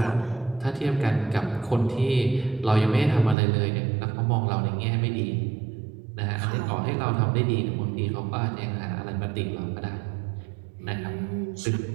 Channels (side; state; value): left; drops out; at 3.4 s